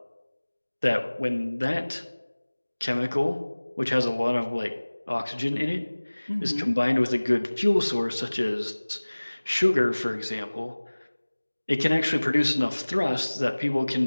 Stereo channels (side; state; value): both; inverted; correlation -1.00